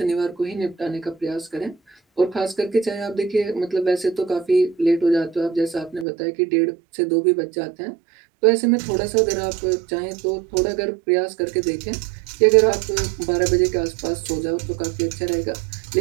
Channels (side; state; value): left; drops out; at 6.1 s